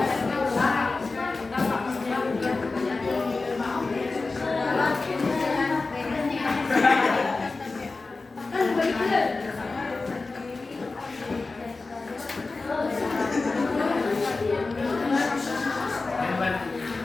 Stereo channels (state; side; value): quieter; right; 3.7 dB